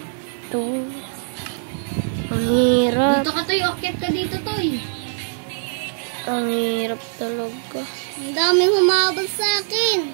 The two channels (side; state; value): left; silent; digital silence